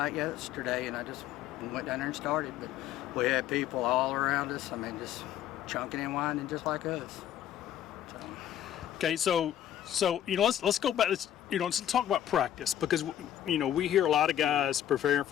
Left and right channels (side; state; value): right; quieter; 11.1 dB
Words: yesterday, and I just went down there and started. But we had people all around us. I mean, just chunking and winding just like us. Okay, so let's go back. Let's talk about practice, because we hear a lot of guys preparing